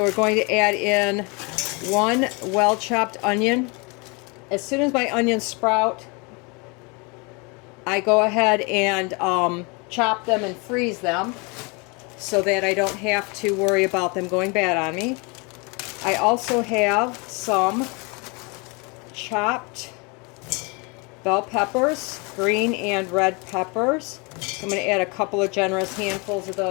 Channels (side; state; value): right; quieter; 30.1 dB